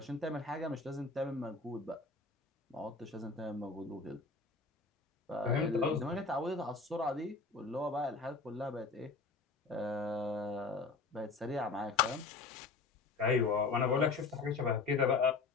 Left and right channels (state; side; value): quieter; right; 4.1 dB